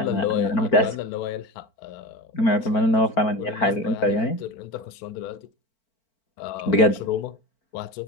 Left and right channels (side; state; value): right; late; 4.4 ms